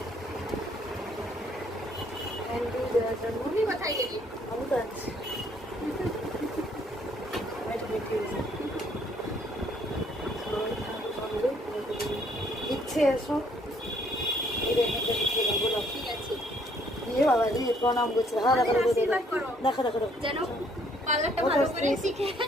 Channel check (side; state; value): both; normal; correlation 0.65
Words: ক্যান্ডি দেওয়ার জন্য। তুমি কোথায় গেলি? আমি তো আছি। ইচ্ছে এসো ঠিক আছে। দিয়ে বাবা দিয়ে প্রণাম করছে। হ্যাঁ দেখো দেখো আশীর্বাদ করো। দেখো দেখো দেখো যেন পার্লারটা ভালো করে শিখে